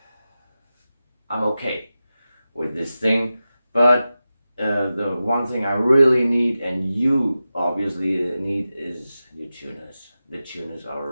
I'm okay with this thing. But the one thing I really need, and you obviously need, is your tuners. The tuners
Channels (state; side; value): inverted; both; correlation -0.93